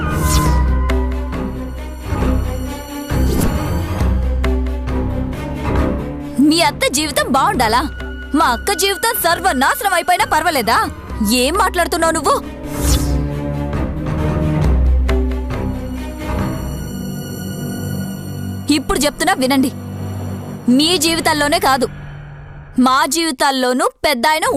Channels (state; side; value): identical; both; correlation 1.00